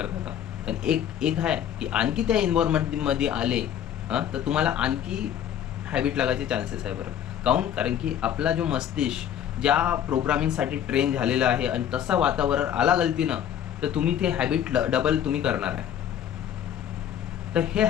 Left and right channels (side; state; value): right; quieter; 9.8 dB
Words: पण एक आहे की आणखी त्या इन्व्हायरमेंटमध्ये आले तर तुम्हाला आणखी हॅबिट लागायचे चान्सेस आहे. बरं कारण की आपला जो मस्तिष्क ज्या प्रोग्रामिंगसाठी ट्रेन झालेला आहे आणि तसा वातावरण आला गलतीनं तर तुम्ही ते हॅबिट डबल तुम्ही करणार आहे. तर हे